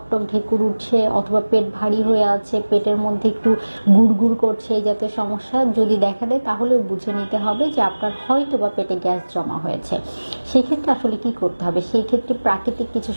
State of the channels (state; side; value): inverted; both; correlation -1.00